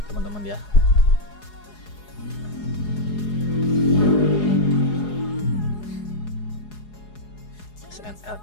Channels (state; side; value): late; right; 4.8 ms